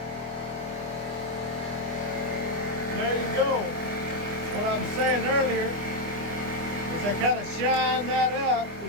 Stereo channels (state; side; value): late; left; 25 ms